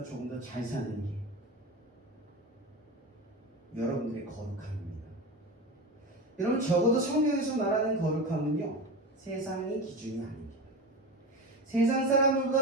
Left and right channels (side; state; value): both; normal; correlation 0.26